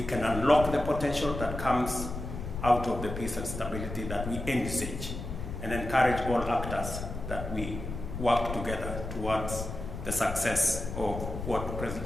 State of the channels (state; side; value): noise; left; rumble, 7 dB below the sound